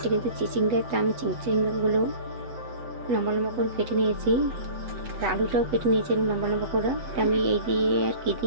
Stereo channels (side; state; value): left; late; 8.1 ms